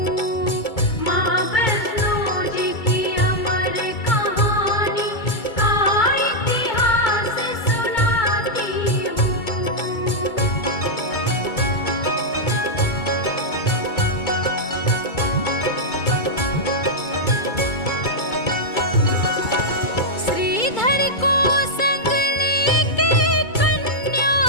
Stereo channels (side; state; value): right; late; 2.2 ms